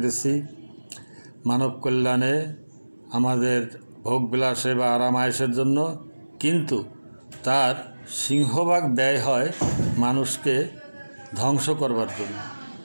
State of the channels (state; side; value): inverted; both; correlation -1.00